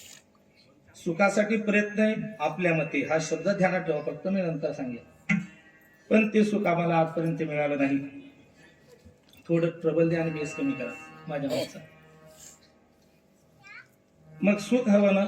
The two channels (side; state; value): both; identical; correlation 1.00